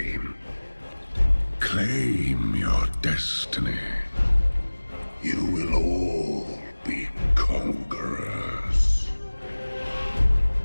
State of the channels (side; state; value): both; inverted; correlation -1.00